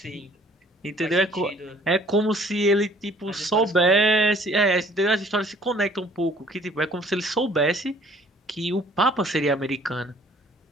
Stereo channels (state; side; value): normal; both; correlation 0.56